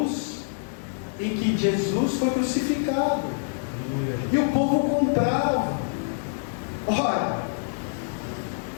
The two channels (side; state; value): right; silent; digital silence